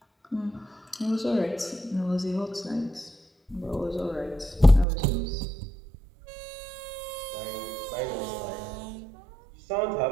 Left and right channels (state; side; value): drops out; left; at 4.9 s